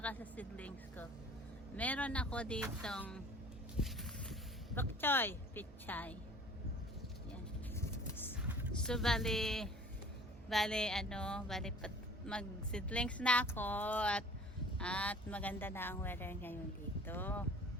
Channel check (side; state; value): both; normal; correlation 0.48